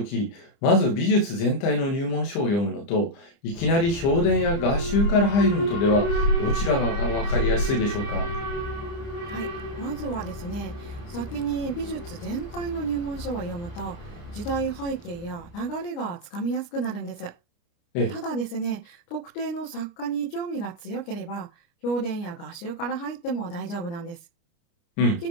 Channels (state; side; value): late; right; 30 ms